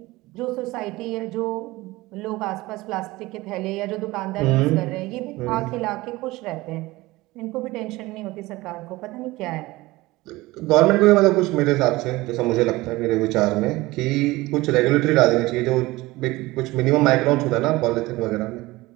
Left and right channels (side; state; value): left; quieter; 20.0 dB